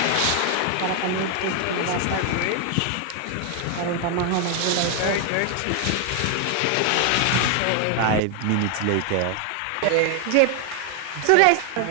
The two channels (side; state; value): both; different; correlation 0.00